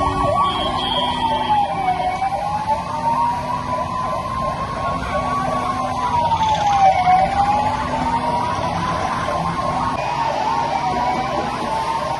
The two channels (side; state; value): both; identical; correlation 1.00